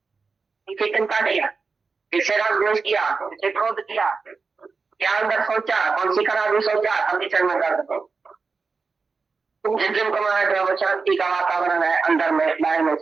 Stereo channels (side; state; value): left; quieter; 4.6 dB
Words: इसे चिंता किया, इससे राग द्वेष किया, इसे क्रोध किया, क्या अंदर सोचा, कौन सी खराबी सोचा, अभी चल में कर दो। तुम जिस दिन को माना वो शांति का वातावरण है, अंदर में बाहर में